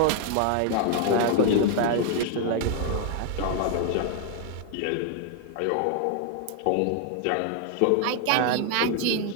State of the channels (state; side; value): different; both; correlation 0.00